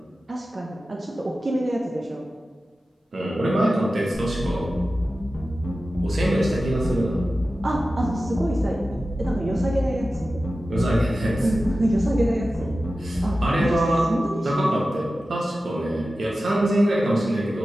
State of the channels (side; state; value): both; normal; correlation 0.94